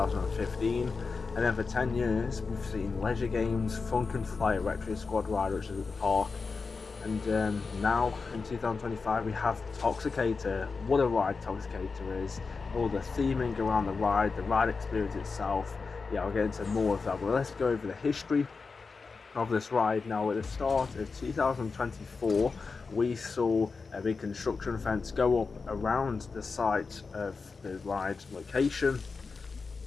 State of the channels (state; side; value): quieter; right; 4.6 dB